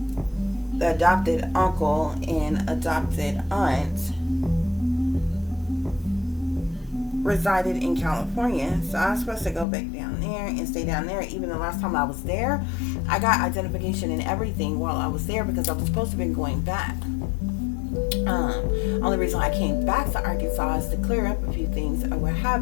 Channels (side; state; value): right; drops out; at 9.7 s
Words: the adopted uncle and adopted aunt resided in California, so I was supposed to go back down there and stay down there. Even the last time I was there, I got identification and everything while I was there, because I was supposed to have been going back. Only reason I came back to Arkansas is to clear up a few things or what